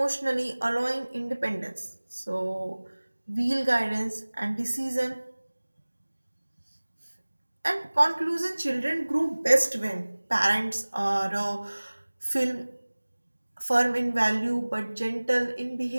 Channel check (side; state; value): both; inverted; correlation -1.00